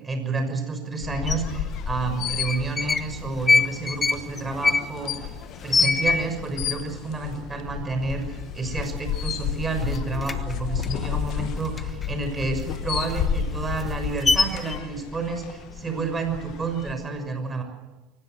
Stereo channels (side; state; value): both; normal; correlation 0.64